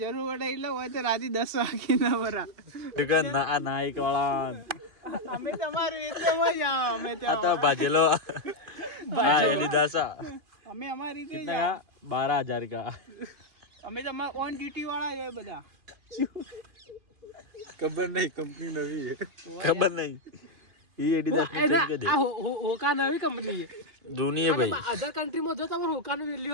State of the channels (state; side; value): late; left; 2.5 ms